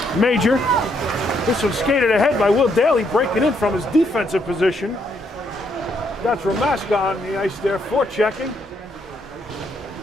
Major. This one skated ahead by Will Daly, breaking in from his defensive position. That's Ramaska on the ice there, forechecking.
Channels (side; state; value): both; normal; correlation 0.74